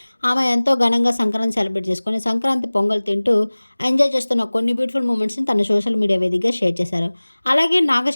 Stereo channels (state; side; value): inverted; both; correlation -1.00